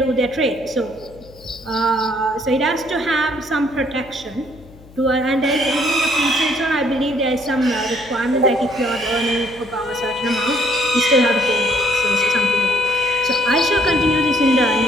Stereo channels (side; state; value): left; noise; hum, 23 dB below the sound